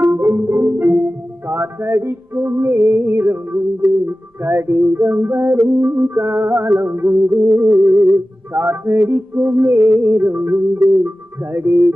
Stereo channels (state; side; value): normal; both; correlation 0.95